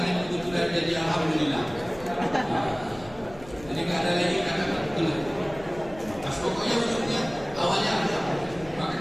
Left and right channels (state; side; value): noise; left; rumble, 19 dB below the sound